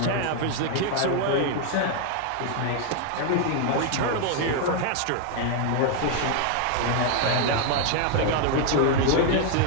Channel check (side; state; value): both; different; correlation 0.00